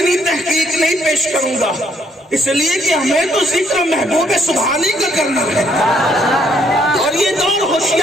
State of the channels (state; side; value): normal; both; correlation 0.68